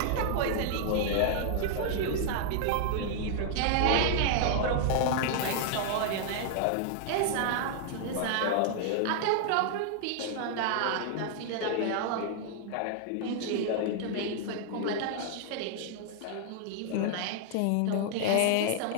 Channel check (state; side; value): different; both; correlation -0.01